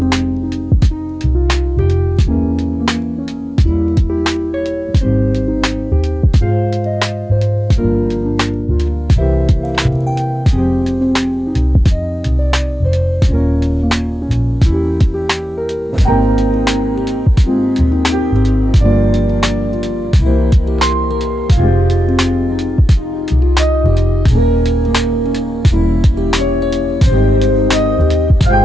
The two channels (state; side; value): normal; both; correlation 0.90